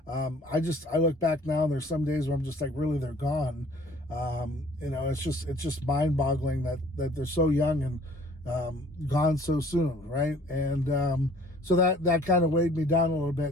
I look back now and there's some days where I'm just like, really, they're gone. It's just mind boggling that they're so young and gone so soon, right? And so that kind of weighed me down a little bit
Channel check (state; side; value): normal; both; correlation 0.54